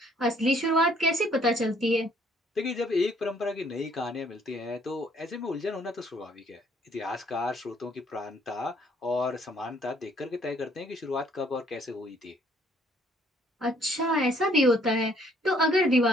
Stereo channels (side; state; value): both; normal; correlation 0.63